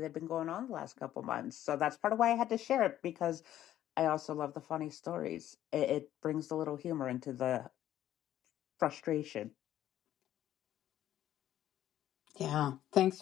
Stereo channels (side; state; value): right; quieter; 12.3 dB